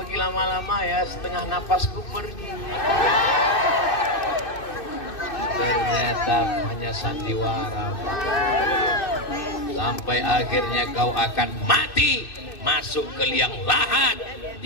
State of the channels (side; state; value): right; late; 2.6 ms